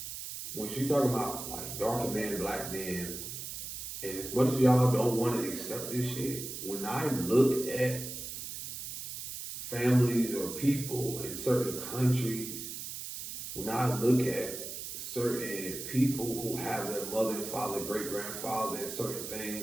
When she talking about like darker men, black men, and as much as y'all don't want to accept this shit, when I look at families or people in certain countries, when I look at certain people who have their mother and father, great grandfather, and certain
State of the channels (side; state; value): right; noise; hiss, 7 dB below the sound